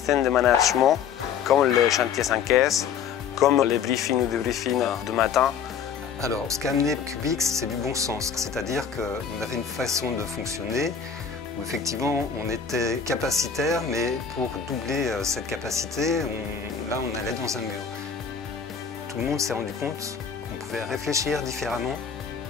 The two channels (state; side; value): quieter; right; 7.0 dB